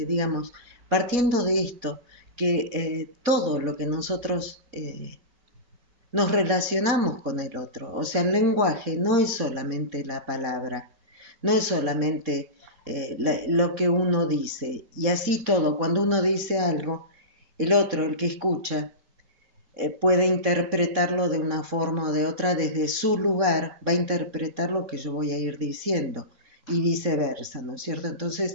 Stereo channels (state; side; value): late; left; 4.1 ms